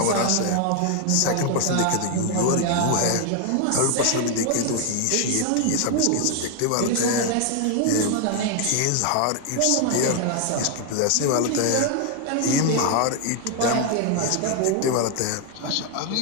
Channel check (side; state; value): both; different; correlation 0.01